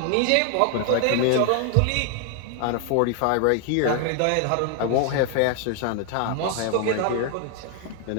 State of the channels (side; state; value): both; different; correlation 0.00